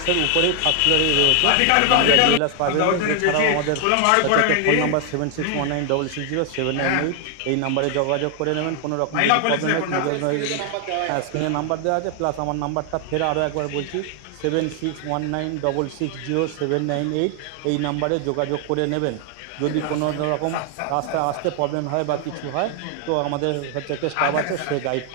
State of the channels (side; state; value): both; different; correlation 0.00